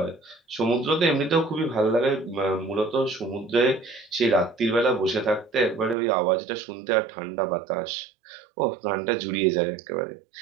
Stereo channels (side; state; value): left; drops out; at 6.0 s